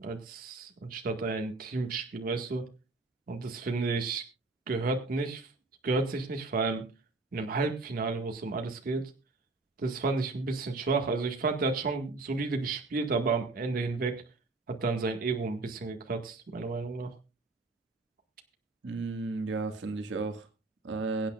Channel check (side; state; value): left; quieter; 3.4 dB